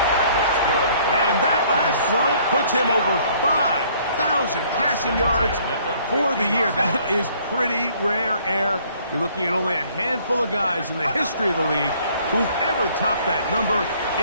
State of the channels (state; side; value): inverted; both; correlation -0.60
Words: And that last throw puts him over 5,000 passing yards for the year. That is pretty rare air. You're looking at only a handful of guys in the history of the league who've ever topped that number